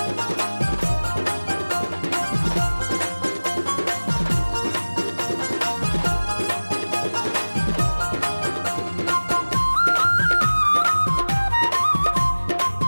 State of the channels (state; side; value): inverted; both; correlation -1.00